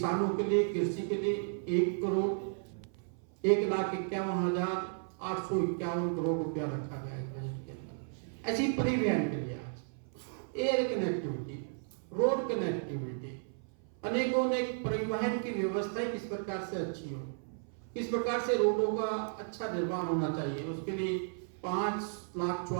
के लिए, कृषि के लिए 1,51,851 करोड़ रुपया रखा गया है बजट के अंदर। ऐसी परिवहन के लिए आज एयर कनेक्टिविटी, रोड कनेक्टिविटी, अनेकों परिवहन की व्यवस्था किस प्रकार से अच्छी हो, किस प्रकार से रोडों का अच्छा निर्माण होना चाहिए, उसके लिए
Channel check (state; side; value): silent; left; 55 dB below the other